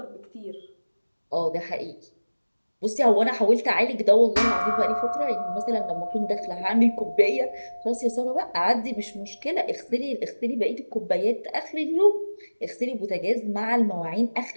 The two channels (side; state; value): both; inverted; correlation -1.00